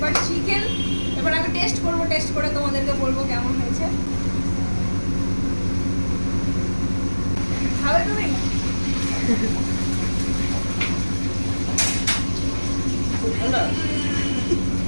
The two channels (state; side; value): inverted; both; correlation -1.00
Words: চিকেন। এবার আমি টেস্ট করবো, টেস্ট করে তোমাদেরকে বলবো কেমন হয়েছে। খাবে তুমি?